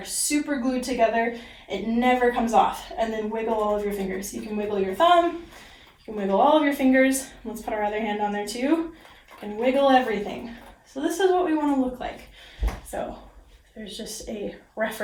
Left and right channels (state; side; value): identical; both; correlation 1.00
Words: super glued together. It never comes off. And then wiggle all of your fingers. You can wiggle your thumb, you can wiggle all of your fingers. Let's put our other hand on there too. You can wiggle everything. So this is what we want to look like. So there's just a